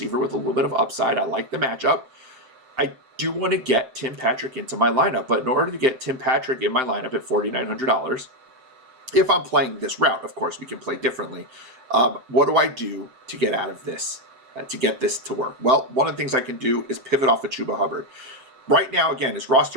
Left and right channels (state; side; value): late; left; 7.7 ms